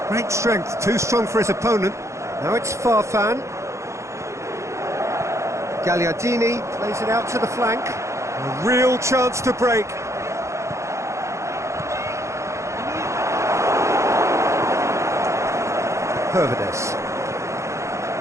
Great strength, too strong for his opponent. Now it's Farfan. Gagliardini plays it out to the flank. A real chance to break. Pervedes.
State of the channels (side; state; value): left; late; 0.14 ms